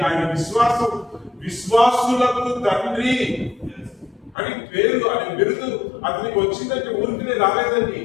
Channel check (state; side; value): drops out; right; at 4.4 s